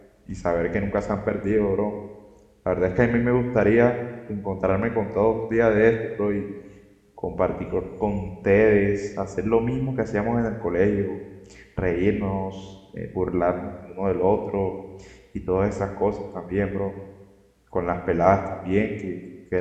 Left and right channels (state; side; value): identical; both; correlation 1.00